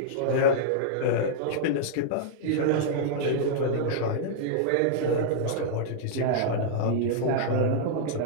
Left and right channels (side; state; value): both; different; correlation -0.01